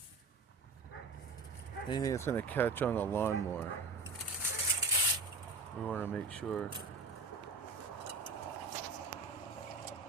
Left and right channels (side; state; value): left; quieter; 3.6 dB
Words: Anything that's gonna catch on the lawnmower, we want to make sure